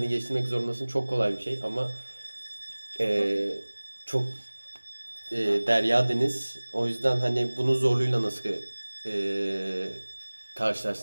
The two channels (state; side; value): inverted; both; correlation -1.00